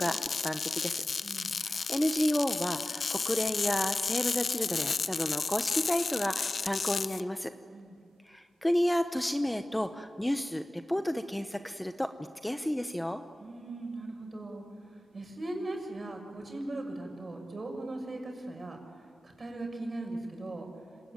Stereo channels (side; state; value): both; normal; correlation 0.96